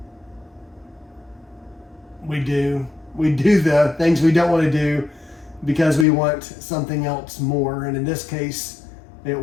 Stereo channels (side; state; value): right; drops out; at 6.1 s